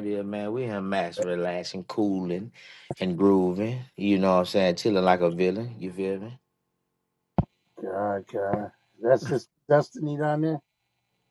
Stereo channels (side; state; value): both; identical; correlation 1.00